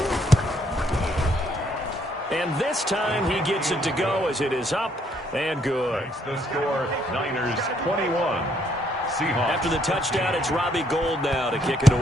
And this time he gets it to go as it is up and good. Makes the score, Niners 21. Seahawks. After the touchdown, it's Robbie Gould now to kick it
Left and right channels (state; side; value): normal; both; correlation 0.69